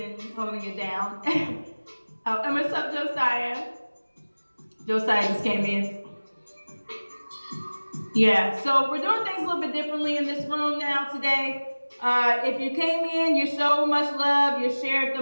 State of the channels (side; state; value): both; inverted; correlation -1.00